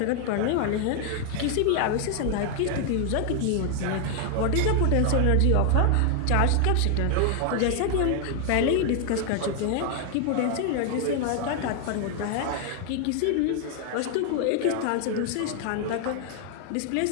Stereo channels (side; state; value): both; different; correlation 0.00